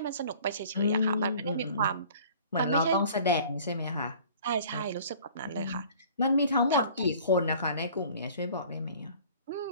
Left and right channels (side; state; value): both; inverted; correlation -0.49